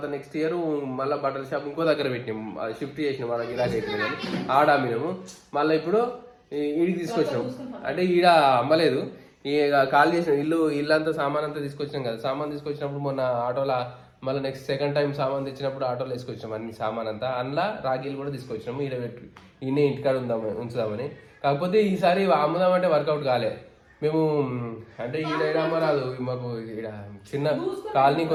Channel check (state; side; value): identical; both; correlation 1.00